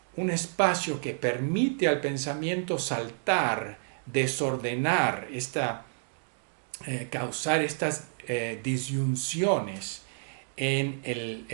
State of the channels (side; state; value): left; silent; digital silence